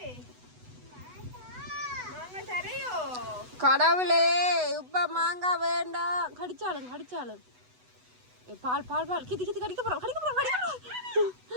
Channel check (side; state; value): left; late; 8.0 ms